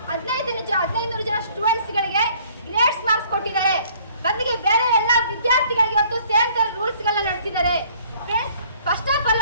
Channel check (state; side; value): inverted; both; correlation -0.57